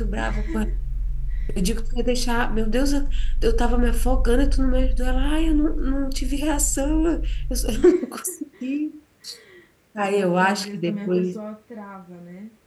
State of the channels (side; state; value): both; identical; correlation 1.00